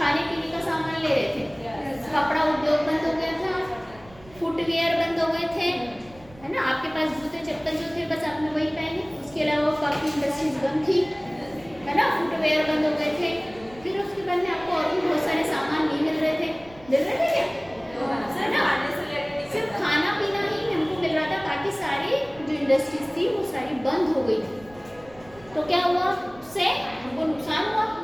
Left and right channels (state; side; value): noise; right; rumble, 23 dB below the sound